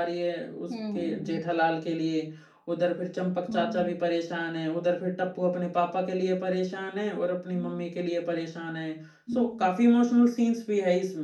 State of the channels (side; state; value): both; identical; correlation 1.00